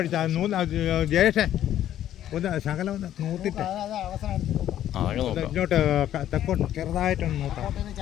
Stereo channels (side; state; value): right; quieter; 11.7 dB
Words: ജയേഷേ ഒന്ന് ശകലം ഒന്ന് നൂത്തിട്ട് ഇങ്ങോട്ട് തെക്കോട്ട് ചെറുതായിട്ടൊന്ന് നൂത്താം.